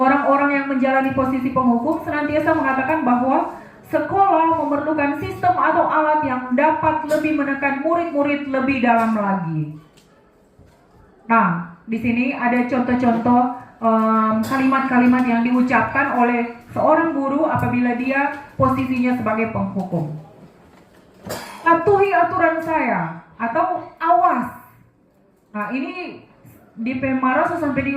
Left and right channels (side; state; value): both; identical; correlation 1.00